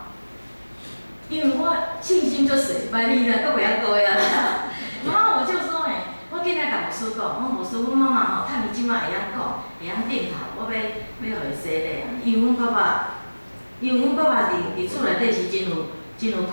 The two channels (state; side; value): inverted; both; correlation -1.00